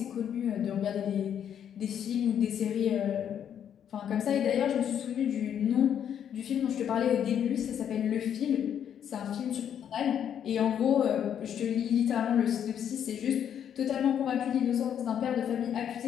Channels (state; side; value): quieter; right; 9.1 dB